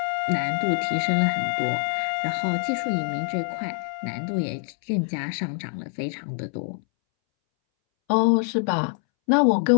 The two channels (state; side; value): silent; right; 62 dB below the other